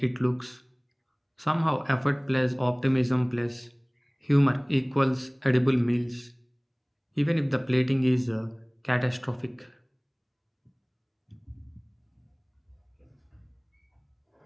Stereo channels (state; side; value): identical; both; correlation 1.00